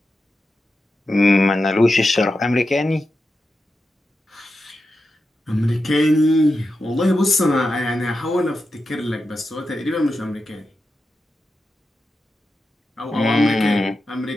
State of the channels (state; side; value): normal; both; correlation 0.90